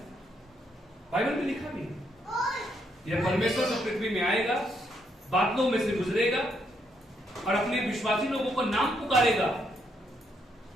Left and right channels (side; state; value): both; normal; correlation 0.75